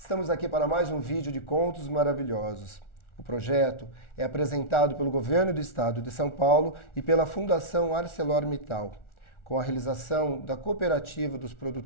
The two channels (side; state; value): right; late; 1.4 ms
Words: aqui para mais um vídeo de Contos Maravilhosos. O projeto é apresentado pelo Governo do Estado de São Paulo e pela Fundação ArcelorMittal, com a realização da Cooperativa dos